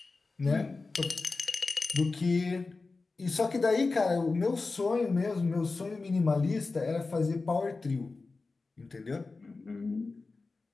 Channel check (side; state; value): right; quieter; 3.8 dB